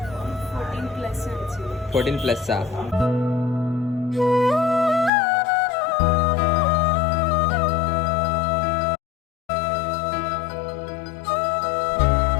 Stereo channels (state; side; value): drops out; right; at 5.1 s